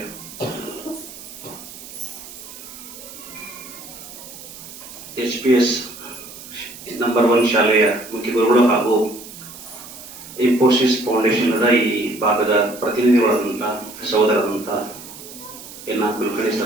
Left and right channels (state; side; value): noise; right; hiss, 15 dB below the sound